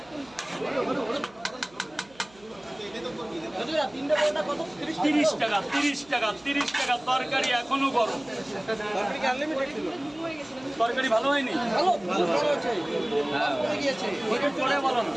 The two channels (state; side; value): noise; right; hum, 27 dB below the sound